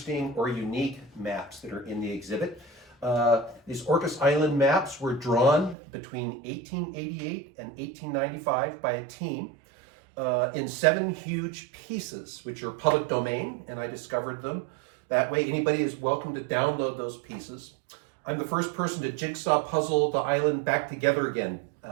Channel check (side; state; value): left; drops out; at 5.8 s